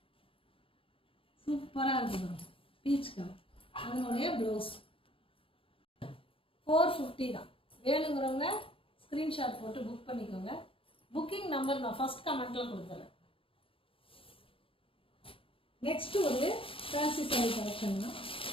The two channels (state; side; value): late; right; 0.26 ms